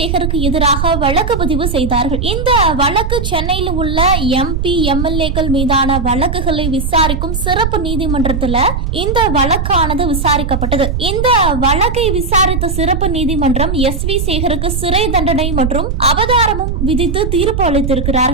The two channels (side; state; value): right; noise; rumble, 2 dB below the sound